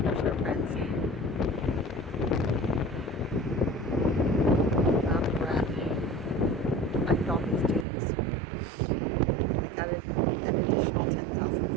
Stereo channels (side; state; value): left; drops out; at 7.9 s